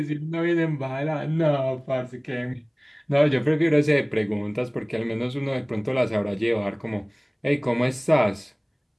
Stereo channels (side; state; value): both; identical; correlation 1.00